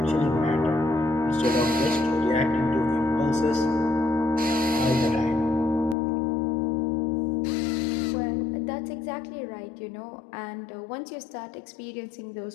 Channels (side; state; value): right; drops out; at 6.0 s